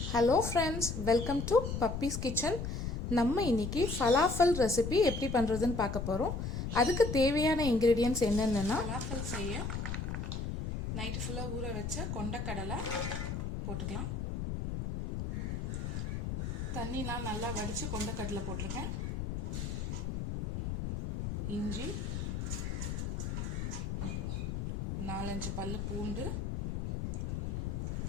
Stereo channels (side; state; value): left; noise; rumble, 3 dB below the sound